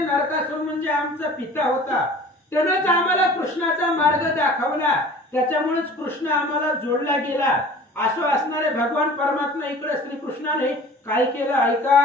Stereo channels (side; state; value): both; normal; correlation 0.44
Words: म्हणजे आमचा पिता होता, त्यानंच आम्हाला कृष्णाचा मार्ग दाखवला, त्याच्यामुळेच कृष्ण आम्हाला जोडला गेला. असं असणारे भगवान परमात्मा इकडे श्रीकृष्णाने काय केलं